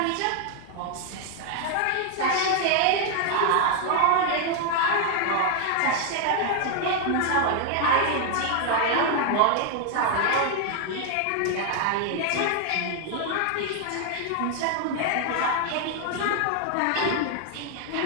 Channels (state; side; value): different; both; correlation 0.00